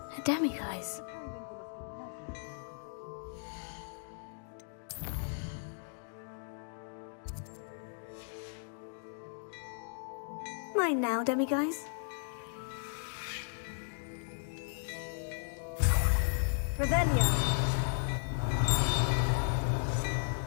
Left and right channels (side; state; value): right; silent; digital silence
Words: A demiguise. Mine now, demiguise. Revelio.